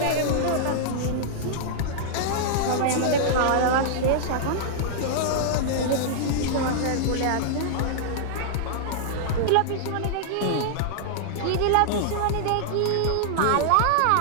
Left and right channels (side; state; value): both; different; correlation -0.01